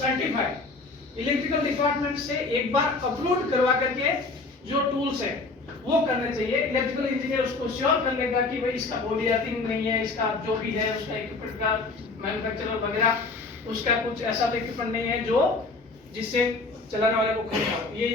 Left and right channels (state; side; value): quieter; right; 3.7 dB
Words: इलेक्ट्रिकल डिपार्टमेंट से एक बार अपलोड करवा करके जो टूल्स है वो करने चाहिए। इलेक्ट्रिकल इंजीनियर उसको श्योर कर लेगा कि भाई इसका बॉडी अर्थिंग नहीं है, इसका जो भी है उसका इक्विपमेंट का मैन्युफैक्चरर वगैरह उसका कुछ ऐसा इक्विपमेंट नहीं है जो जिससे चलाने वाले को खरीदना हो। ये